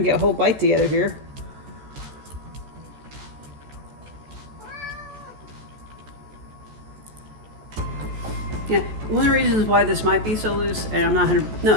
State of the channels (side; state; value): left; late; 14 ms